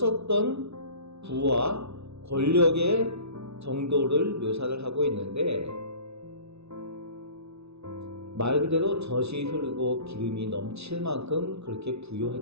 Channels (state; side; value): late; left; 0.80 ms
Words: 부와 권력의 정도를 묘사를 하고 있는데 말 그대로 젖이 흐르고 기름이 넘칠 만큼 그렇게